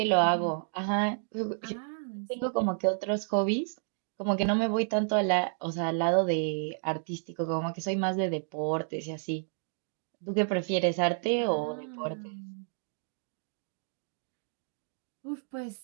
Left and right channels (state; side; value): silent; left; digital silence